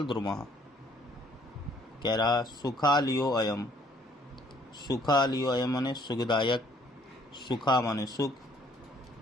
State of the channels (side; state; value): both; normal; correlation 0.62